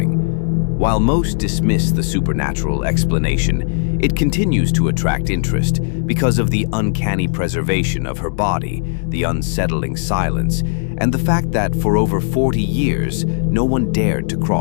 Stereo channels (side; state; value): right; silent; 68 dB below the other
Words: While most dismiss the supernatural explanation, it continues to attract interest because of the uncanny preservation of her body, the unsettling silence, and the fact that for over 40 years, no one dared to